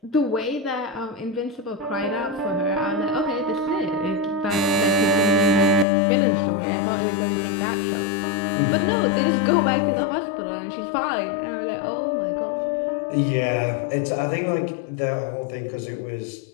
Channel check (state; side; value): drops out; right; at 5.9 s